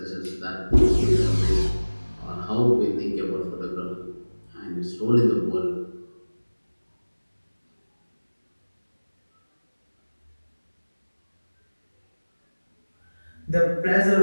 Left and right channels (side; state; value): both; inverted; correlation -1.00